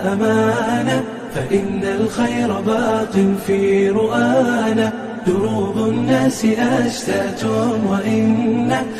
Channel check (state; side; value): identical; both; correlation 1.00